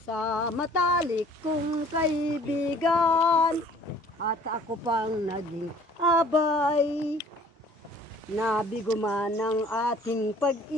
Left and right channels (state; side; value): normal; both; correlation 0.54